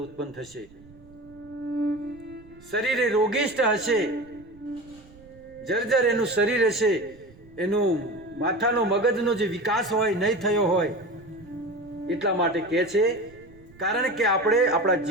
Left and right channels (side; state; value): right; noise; rumble, 24 dB below the sound